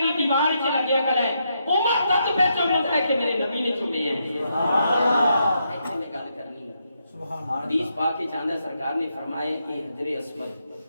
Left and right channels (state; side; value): inverted; both; correlation -0.80